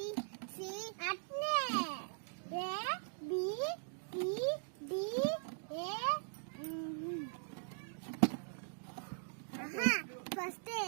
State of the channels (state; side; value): silent; left; digital silence